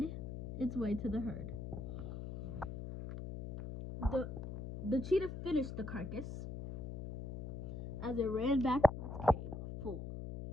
its way to the herd. The cheetah finished the carcass as it ran back to its cave full.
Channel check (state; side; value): noise; left; hum, 6 dB below the sound